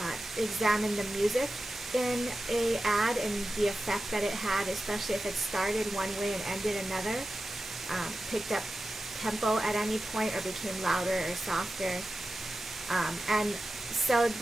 examined the music in a ad and the effect that it had, especially if it started one way and ended another, picked up tempo at any point, or became louder or softer. And so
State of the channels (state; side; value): normal; both; correlation 0.93